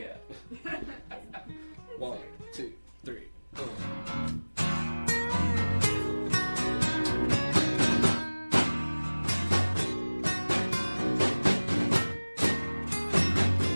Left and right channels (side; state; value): both; inverted; correlation -1.00